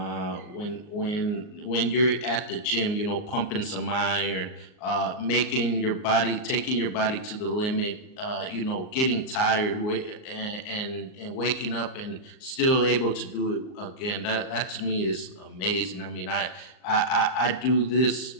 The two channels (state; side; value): late; right; 38 ms